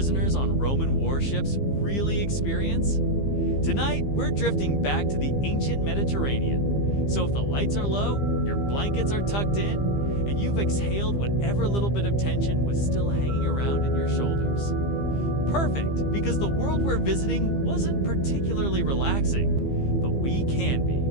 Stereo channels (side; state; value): right; late; 15 ms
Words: on Roman warships really experience? Tonight, we're drifting back to the ancient Mediterranean. So if the lights are low, your blankets are tucked in, and you've exhaled whatever little bit of tension was still hanging around in your shoulders. Perfect, because the world we're visiting wasn't particularly relaxing, but we can be.